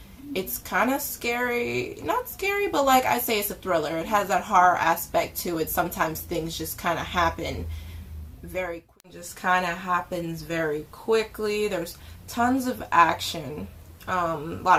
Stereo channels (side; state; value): both; identical; correlation 1.00